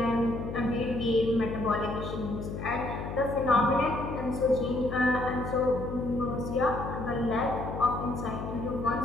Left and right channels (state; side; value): noise; left; hum, 6 dB below the sound